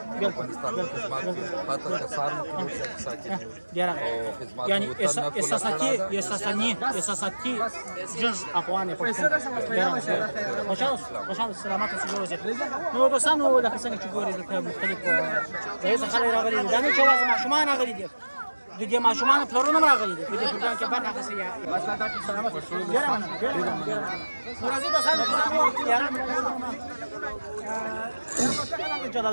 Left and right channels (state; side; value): inverted; both; correlation -1.00